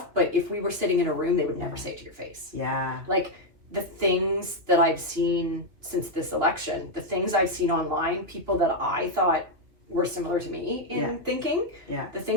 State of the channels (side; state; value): left; late; 2.9 ms